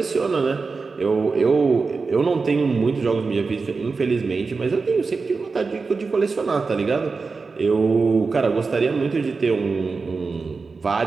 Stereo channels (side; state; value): left; quieter; 4.4 dB